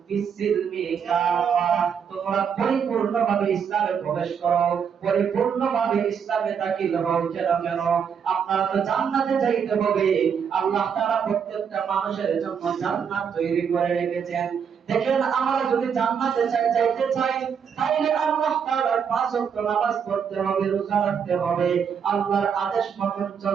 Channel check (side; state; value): left; quieter; 7.2 dB